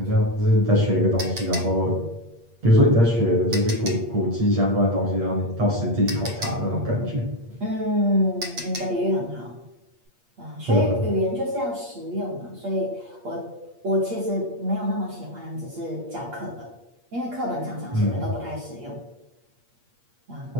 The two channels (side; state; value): left; late; 8.5 ms